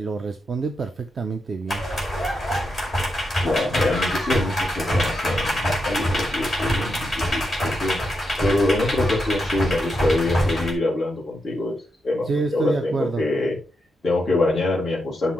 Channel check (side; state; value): both; normal; correlation 0.84